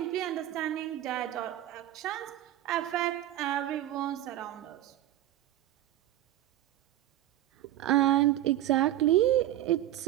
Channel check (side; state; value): left; quieter; 13.6 dB